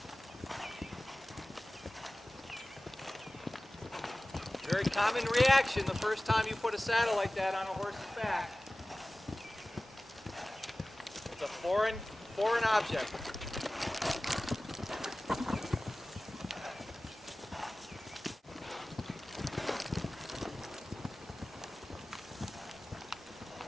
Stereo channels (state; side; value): normal; both; correlation 0.97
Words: Very common reaction the first time you put a saddle like that on a horse's back. It's a foreign object.